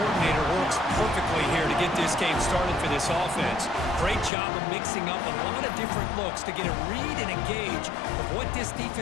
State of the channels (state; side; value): drops out; right; at 4.3 s